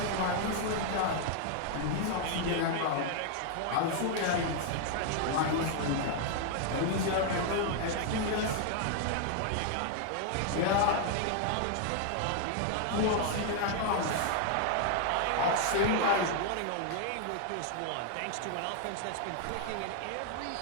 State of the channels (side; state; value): both; different; correlation 0.00